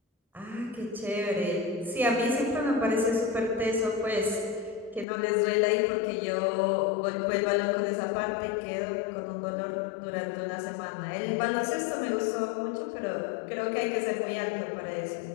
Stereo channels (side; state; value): right; drops out; at 5.1 s